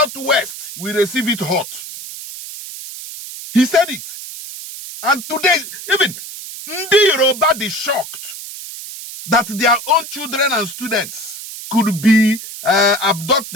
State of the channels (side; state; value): right; noise; hiss, 11 dB below the sound